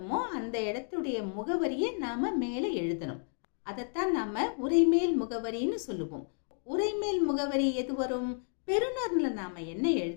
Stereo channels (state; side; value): silent; right; 57 dB below the other